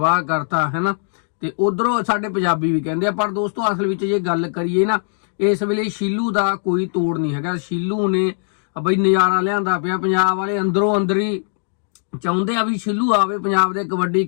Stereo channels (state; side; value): silent; right; digital silence